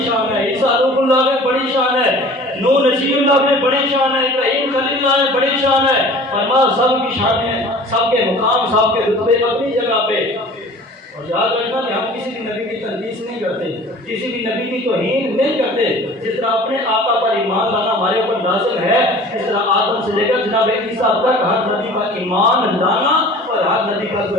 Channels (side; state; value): both; normal; correlation 0.44